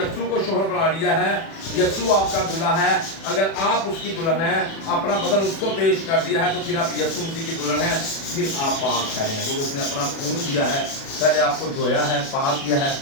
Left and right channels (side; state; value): right; late; 36 ms